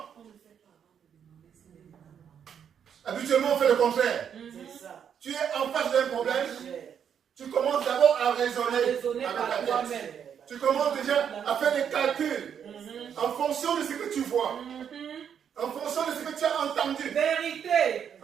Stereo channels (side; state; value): left; quieter; 8.1 dB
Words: Habituellement, on fait le contraire. Tu es en face d'un problème. Tu commences d'abord à raisonner avec par ta toi-même. tête. Tu commences déjà à faire des calculs en fonction de ce que tu vois, en fonction de ce que tu as entendu, Vérité.